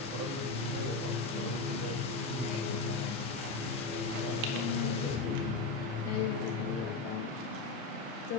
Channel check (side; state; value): right; quieter; 3.9 dB